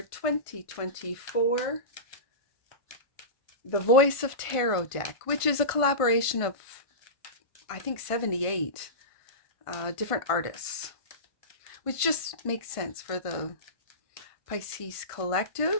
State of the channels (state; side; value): late; right; 1.5 ms